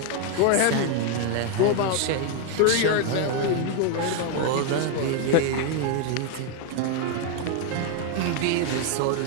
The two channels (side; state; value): both; different; correlation 0.01